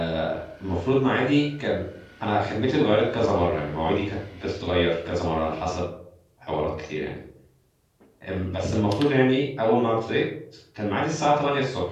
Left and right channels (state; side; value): identical; both; correlation 1.00